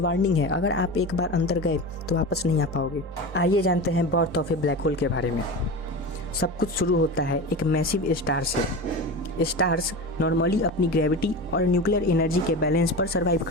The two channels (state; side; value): normal; both; correlation 0.27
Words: वार्निंग है, अगर आप एक बार अंदर गए तो वापस नहीं आ पाओगे। आइए जानते हैं birth of A black hole के बारे में। सब कुछ शुरू होता है एक मैसिव स्टार से। स्टार्स नॉर्मली अपनी ग्रेविटी और न्यूक्लियर एनर्जी के बैलेंस पर सर्वाइव